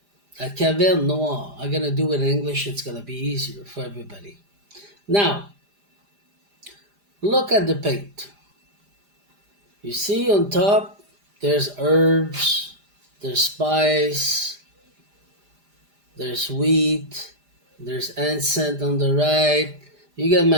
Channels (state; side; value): late; left; 5.0 ms